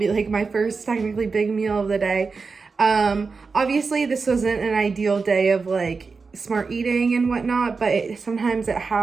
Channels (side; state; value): left; quieter; 4.6 dB